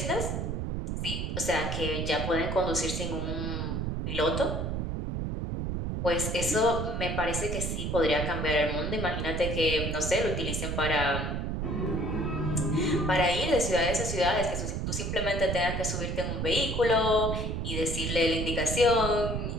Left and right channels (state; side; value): noise; right; rumble, 2 dB below the sound